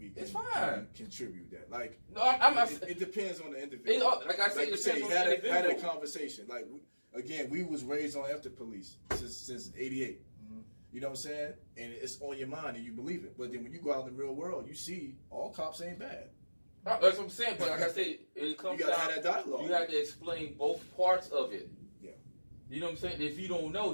can contribute that. Like, no, I'm not. It depends on the individual. Like I said, it depends on the individual. Had a conversation. Like, again, we was raised on after police since '88. Mm-hmm. You know what I'm saying? And it's on your mind and you believe it. But then when you go out in the real world, you see all cops ain't bad. That's what I'm saying. But like I said, it comes down. You gotta have that dialogue. You have to explain both parts of it. Yeah. You know what I'm saying? If you don't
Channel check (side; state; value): both; inverted; correlation -1.00